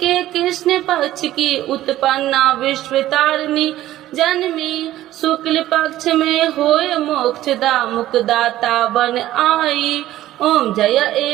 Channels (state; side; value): quieter; left; 14.3 dB